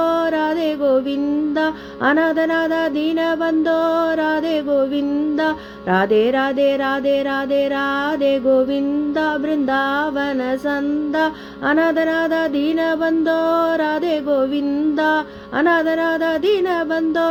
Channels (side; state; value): both; identical; correlation 1.00